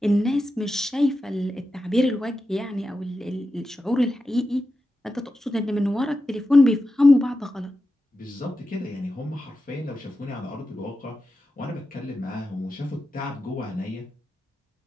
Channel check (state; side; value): normal; both; correlation 0.90